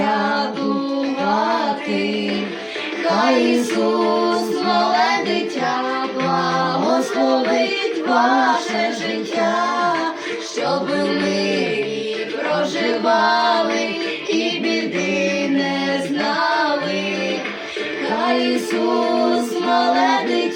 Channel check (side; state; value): both; identical; correlation 1.00